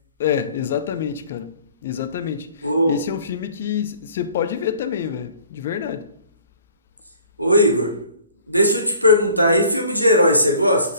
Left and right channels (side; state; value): both; inverted; correlation -0.53